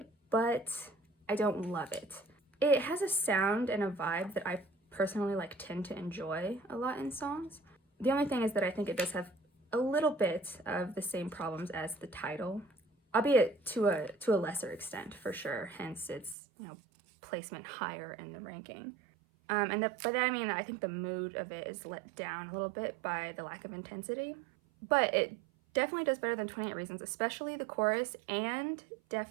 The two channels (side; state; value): left; drops out; at 16.4 s